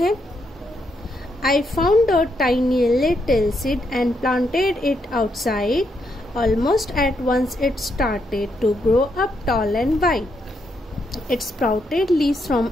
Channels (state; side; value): normal; both; correlation 0.78